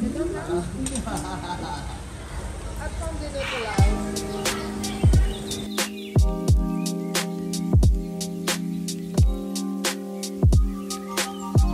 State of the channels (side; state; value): both; identical; correlation 1.00